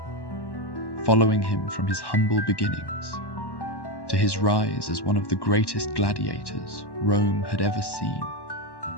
following him from his humble beginnings to his rise as one of the greatest gladiators Rome had ever seen.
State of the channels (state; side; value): late; right; 1.1 ms